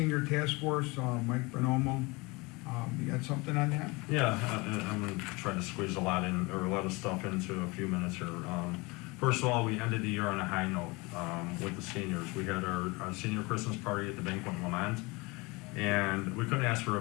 task force, Mike Bonomo, you got something on that? Yeah, I'm gonna try to squeeze a lot of stuff into a few minutes here. First of all, we ended the year on a high note with the seniors. We had our senior Christmas party at the Banquet in Lamont, and we couldn't ask for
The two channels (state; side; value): quieter; right; 25.5 dB